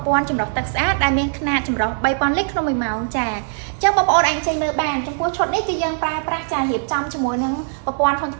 ព័ន្ធចម្រោះទឹកស្អាតដែលមានຂະຫນាតចម្រោះ3000លីត្រក្នុង1ម៉ោងចាអញ្ចឹងបងប្អូនអាចចេញមើលបានចំពោះឈុតនេះគឺយើងប្រើប្រាស់ចារៀបចំជាមួយនឹងប្រព័ន្ធធុងច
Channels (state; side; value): silent; left; digital silence